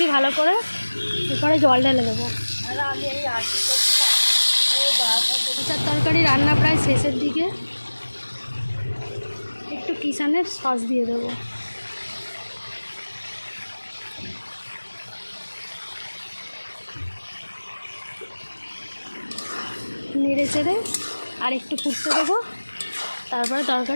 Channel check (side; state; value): both; inverted; correlation -1.00